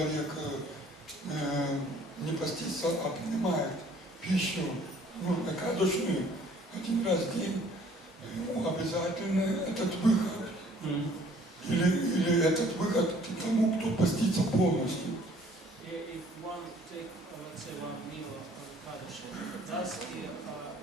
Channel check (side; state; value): both; normal; correlation 0.57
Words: не постится, а принимает пищу, экадашную, один раз в день, ему обязательно этот выход. Или этот выход к тому, кто постится полностью. If one take, let's say, one meal of Ekadashi, thus